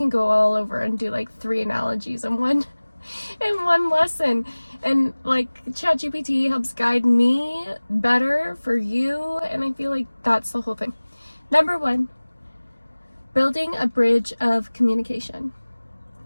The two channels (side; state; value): both; inverted; correlation -1.00